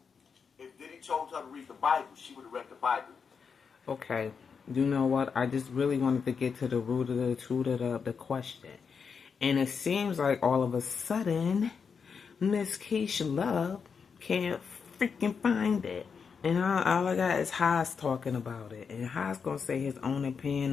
If Diddy told her to read the Bible, she would have read the Bible. Okay. You know what? I just really wanted to get to the root of the question. And it seems like all of a sudden, Miss Keisha Love can't freaking find it. And all I got is Haas talking about it. And Haas going to say his own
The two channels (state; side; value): quieter; right; 6.0 dB